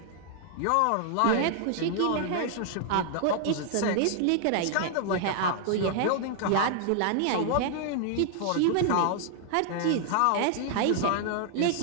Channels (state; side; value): different; both; correlation 0.00